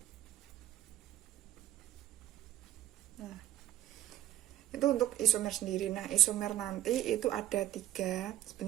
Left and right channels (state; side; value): quieter; left; 13.2 dB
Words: Nah, itu untuk isomer sendiri. Nah, isomer nanti itu ada 3.